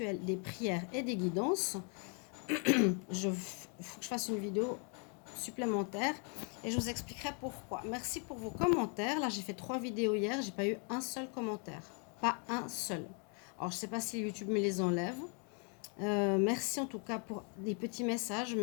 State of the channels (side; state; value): right; quieter; 38.3 dB